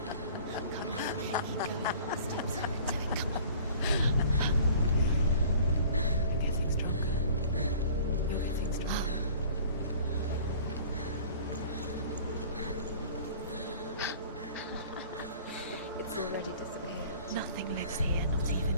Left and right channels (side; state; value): both; inverted; correlation -0.48